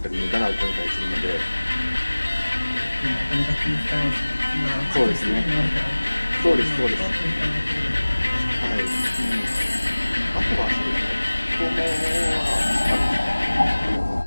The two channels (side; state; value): both; inverted; correlation -1.00